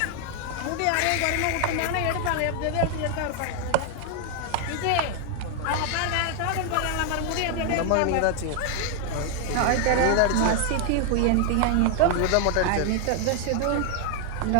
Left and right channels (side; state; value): both; different; correlation 0.00